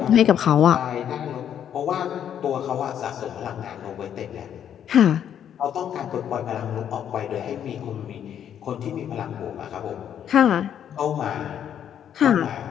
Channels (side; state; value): right; quieter; 9.4 dB